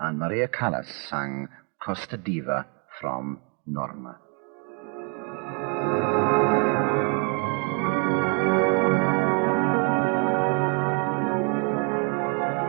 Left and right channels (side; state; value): left; quieter; 37.9 dB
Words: Maria Callas sang Casta Diva from Norma.